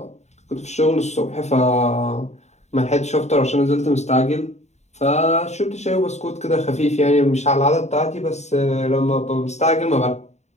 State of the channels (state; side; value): late; right; 0.32 ms